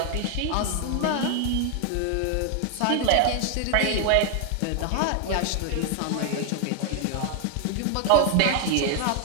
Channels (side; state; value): both; different; correlation 0.00